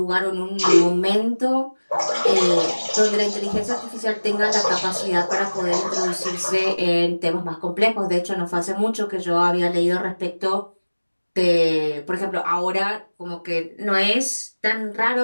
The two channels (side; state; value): both; inverted; correlation -1.00